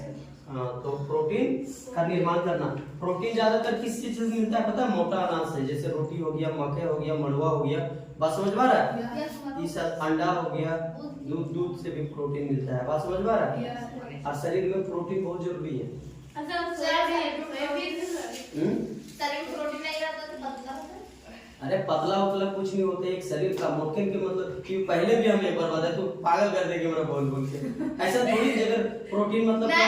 हाँ, तो प्रोटीन का निर्माण करना। प्रोटीन ज्यादातर किस चीज से मिलता है पता है? मोटा अनाज से, जैसे रोटी हो गया, मकई हो गया, मड़ुआ हो गया। बात समझ में आ रहा है? ये सब अंडा हो गया, दूध से भी प्रोटीन मिलता है। बात समझ में आ रहा है? और शरीर में प्रोटीन बहुत जरूरी है। अरे पतला उतला कुछ नहीं होता, एक शरीर का मोटके के मतलब कि पहले भी हम एक बार बताए तो पागल कर देंगे मेरा बोल के। ऐसा थोड़ी जगह प्रोटीन मतलब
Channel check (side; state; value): both; identical; correlation 1.00